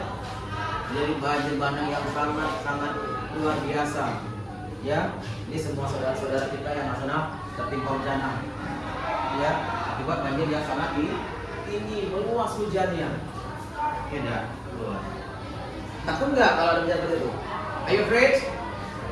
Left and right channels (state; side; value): identical; both; correlation 1.00